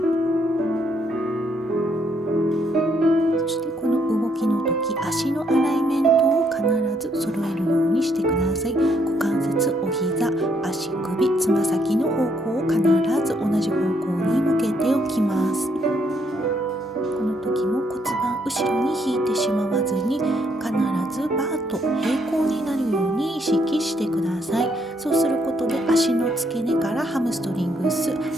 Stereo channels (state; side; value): normal; both; correlation 0.72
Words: そしてこの動きの時、足のアライメントを必ず揃えるようにしてください。股関節、お膝、足首、つま先の方向を必ず同じ方向に向けておきます。この時も骨盤後ろに引いてしまわずに、必ずバーと平行になるように意識してください。そうすることで足の付け根からハムストリングス、アキ